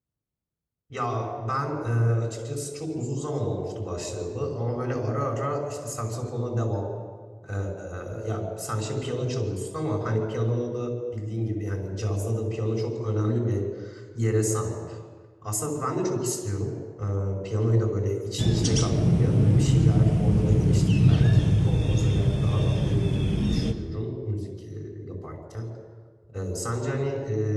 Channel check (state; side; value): identical; both; correlation 1.00